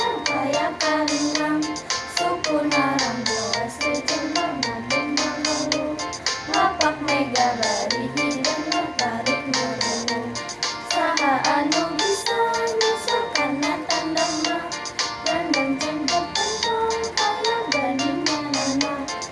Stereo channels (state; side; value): identical; both; correlation 1.00